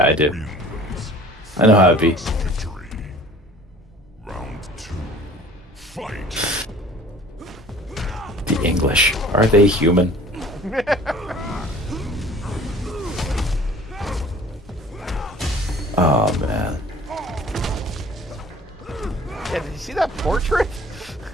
I do. I know how it be. Victory. Round 2. Fight. The English. Are they human? Oh man. Yeah, did you see that portrait?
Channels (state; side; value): normal; both; correlation 0.48